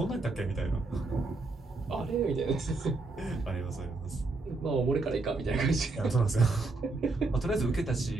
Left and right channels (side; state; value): left; quieter; 3.5 dB